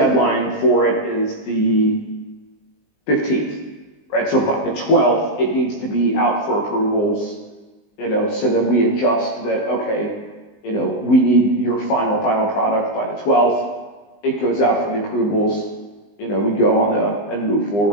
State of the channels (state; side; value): late; right; 20 ms